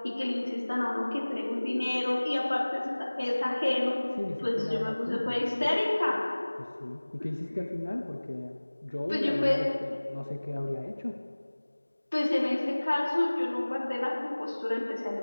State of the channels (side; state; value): both; inverted; correlation -1.00